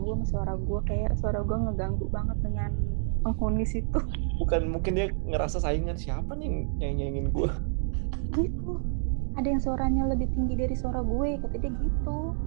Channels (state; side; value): silent; left; digital silence